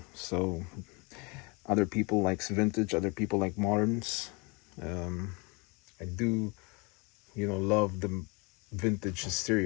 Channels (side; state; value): right; quieter; 28.9 dB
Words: So other people likes vintage, other people like moderns. Um, I do, love the vintage